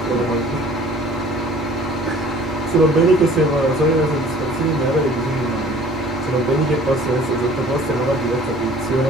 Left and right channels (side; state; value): both; normal; correlation 0.50